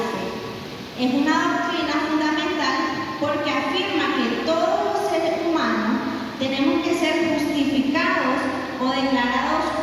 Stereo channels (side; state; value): both; identical; correlation 1.00